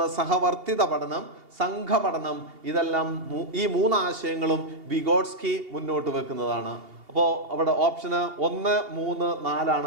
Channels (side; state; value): left; late; 2.8 ms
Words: സഹവർത്തിത പഠനം, സംഘപഠനം. ഇതെല്ലാം ഈ 3 ആശയങ്ങളും വിഗോട്സ്കി മുന്നോട്ട് വെക്കുന്നതാണ്. അപ്പോൾ അവിടെ ഓപ്ഷന് 1, 3, 4